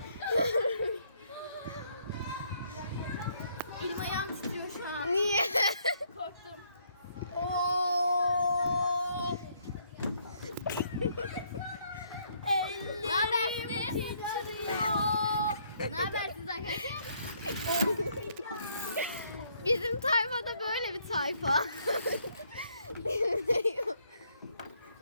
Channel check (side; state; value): both; inverted; correlation -0.69